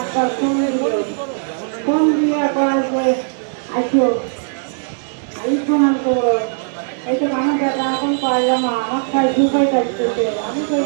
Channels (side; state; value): left; silent; 67 dB below the other